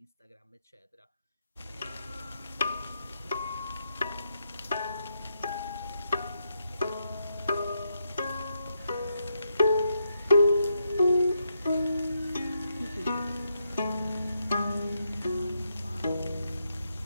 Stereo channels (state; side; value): inverted; both; correlation -0.81